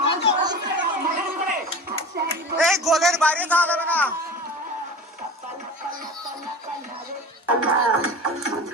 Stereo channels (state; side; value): normal; both; correlation 0.34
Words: এই গোলের বাইরে যাওয়া যাবে না।